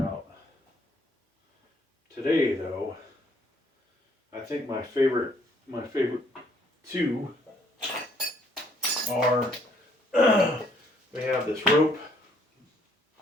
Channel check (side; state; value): both; normal; correlation 0.65